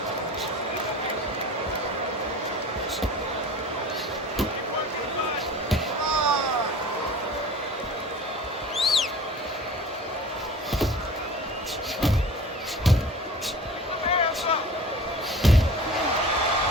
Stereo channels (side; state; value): both; normal; correlation 0.41